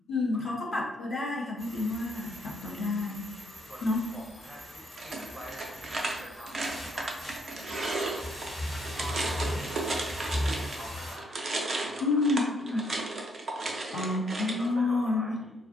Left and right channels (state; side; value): normal; both; correlation 0.71